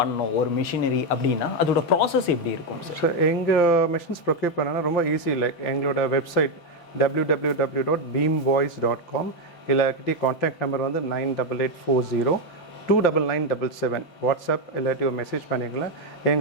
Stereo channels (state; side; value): late; right; 5.9 ms